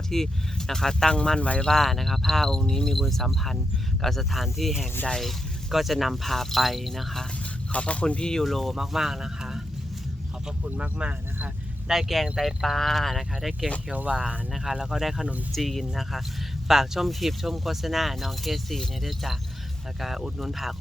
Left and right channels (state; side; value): normal; both; correlation 0.86